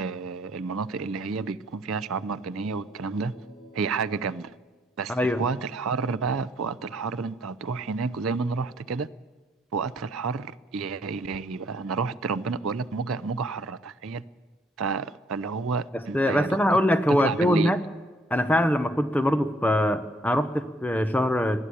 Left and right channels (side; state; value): both; normal; correlation 0.67